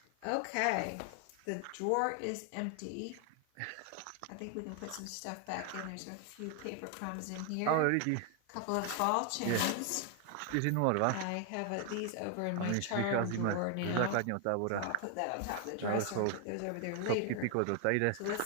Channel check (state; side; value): different; both; correlation 0.00